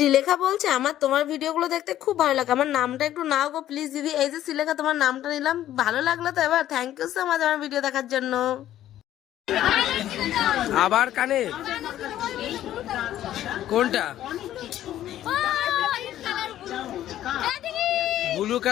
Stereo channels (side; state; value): right; quieter; 12.5 dB